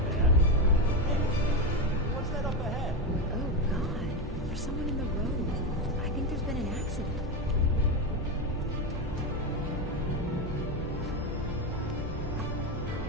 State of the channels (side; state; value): both; normal; correlation 0.13